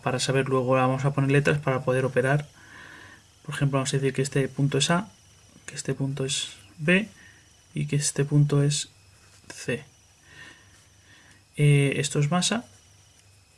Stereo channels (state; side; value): identical; both; correlation 1.00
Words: saber luego, vamos a poner letras para poder operar. Por ejemplo, vamos a decir que este punto es A, que este punto es B y que este punto es C. Esto es masa.